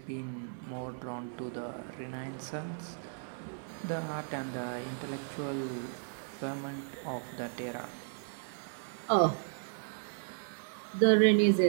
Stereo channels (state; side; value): silent; left; digital silence